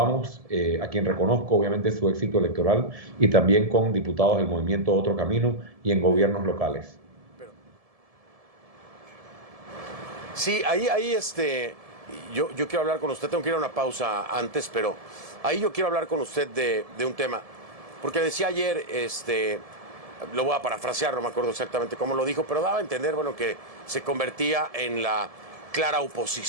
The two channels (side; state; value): left; late; 1.7 ms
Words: a quien reconozco obviamente su éxito electoral, y también con diputados del movimiento Otro Camino y en gobiernos locales. Sí, ahí yo quiero hablar con usted, tengo que ir a una pausa antes, pero ahí yo quiero hablar con usted de un tema, porque decía ayer, lo voy a parafrasear, no me acuerdo exactamente cómo lo dijo, pero daba a entender, bueno, que se convertía en la clara